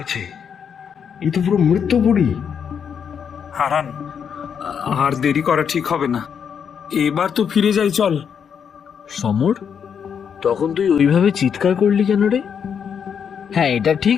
এ তো পুরো মৃত্যুপুরী। হারান, আর দেরি করা ঠিক হবে না, এবার তো ফিরে যাই, চল। সমর, তখন তুই ওইভাবে চিৎকার করলি কেন রে? হ্যাঁ, এটা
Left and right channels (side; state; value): right; quieter; 7.4 dB